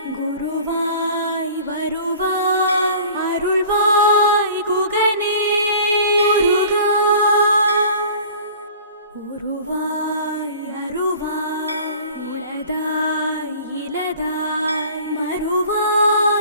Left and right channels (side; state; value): both; inverted; correlation -0.45